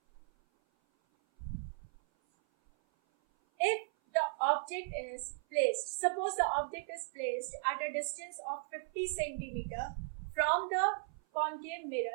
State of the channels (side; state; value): left; silent; 53 dB below the other